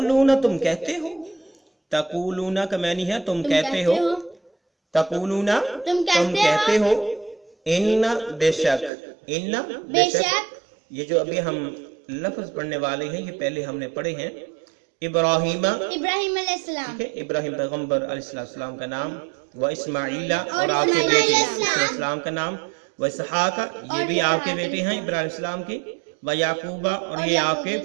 تم کہتے ہو، تقولون کا معنی ہے تم کہتے ہو. تقولون تم تم کہتے ہو. ان بے شک، ان بے شک. یہ جو ابھی ہم لفظ پڑھنے والے ہیں یہ پہلے ہم نے پڑھے ہیں. ابراہیم، ابراہیم علیہ السلام ٹھیک ہے، ابراہیم پیغمبر علیہ السلام کا نام. و اسماعیل اور آپ کے بیٹے علیہ السلام کا نام. و اسحاق یہ بھی آپ کے بیٹے ہیں ابراہیم علیہ السلام کے. و یعقوب اور یہ آپ کے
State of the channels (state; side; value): drops out; left; at 8.9 s